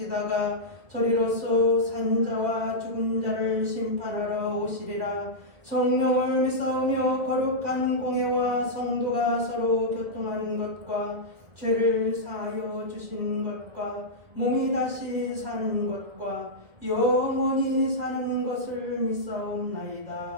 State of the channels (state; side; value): late; left; 2.0 ms